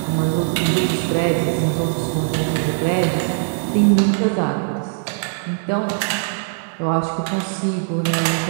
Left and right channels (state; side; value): silent; left; 65 dB below the other